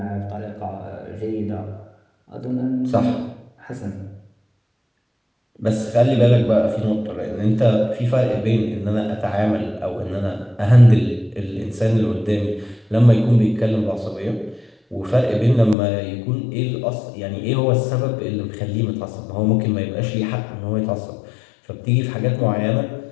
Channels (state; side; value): drops out; right; at 15.8 s